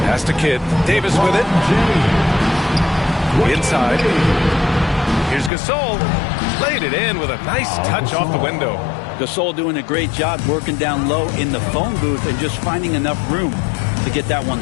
Pass to Kidd. Davis with it. Inside. Here's Gasol. Laid it in with a nice touch off the window. Gasol doing a great job working down low in the phone booth and just finding enough room to get that one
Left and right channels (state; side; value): drops out; right; at 5.5 s